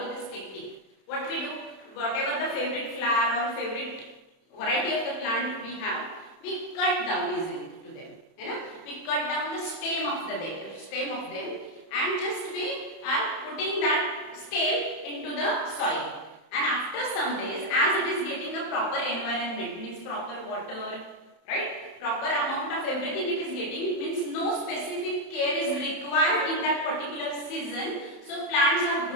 this technique. What we do, whatever the favorite flower or favorite variety of the plant we have, we cut down easily to them. You know, we cut down the stem of them, and just we are putting that stem into the soil. And after some days, as it is getting the proper environment, means proper water, right? Proper amount of everything it is getting, means no specific care is required in that particular season. So plants are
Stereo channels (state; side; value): late; right; 31 ms